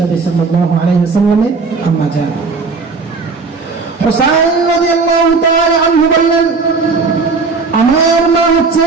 সাল্লাল্লাহু আলাইহি ওয়াসাল্লামের আম্মা জান। হুসাইন রাদিয়াল্লাহু তাআলা আনহু বললেন আমার মা হচ্ছে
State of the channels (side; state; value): left; quieter; 4.3 dB